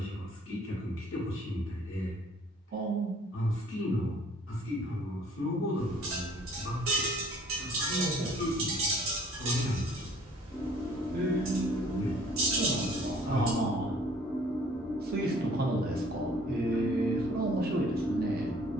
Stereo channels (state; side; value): normal; both; correlation 0.56